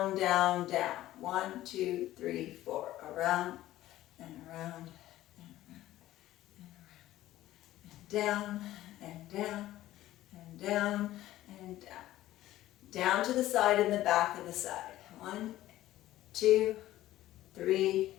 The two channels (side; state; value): right; quieter; 14.8 dB